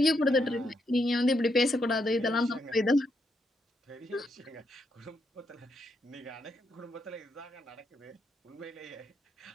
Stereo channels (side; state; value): both; normal; correlation 0.80